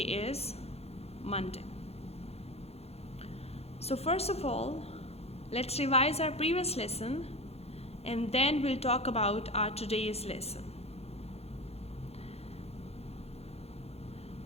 is Monday. So first of all, let's revise our previous lesson and then we'll talk about our today's lesson.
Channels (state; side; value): late; right; 0.30 ms